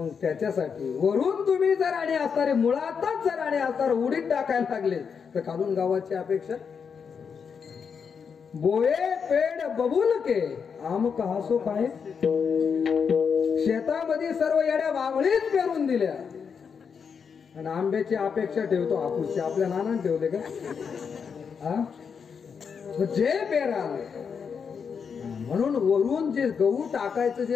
त्याच्यासाठी वरून तुम्ही जर आणि असणारे, मुळातच जर आणि असणार उडीद टाकायला लागले तर खालून गावाची अपेक्षा. बोये पेड बबूल के आम कहासो काय, शेतामध्ये सर्व येड्या वावळीच पेरून दिल्या आणि आंब्याची अपेक्षा ठेवतो हापूसची. आपल्या नानाने ठेवले का? जे पेराल. म्हणून वरून जे गहू टाकायचं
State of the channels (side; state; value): right; quieter; 6.3 dB